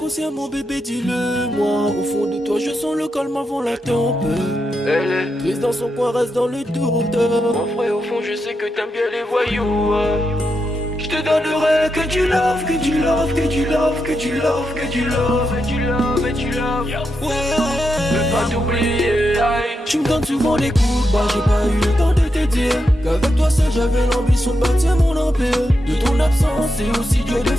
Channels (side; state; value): both; normal; correlation 0.85